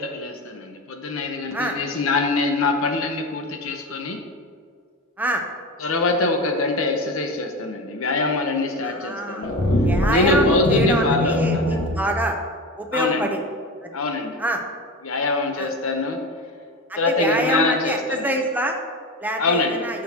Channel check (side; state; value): both; normal; correlation 0.24